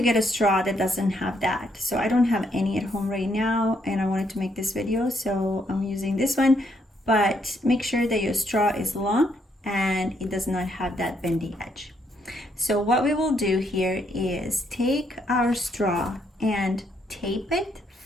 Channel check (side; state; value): both; normal; correlation 0.73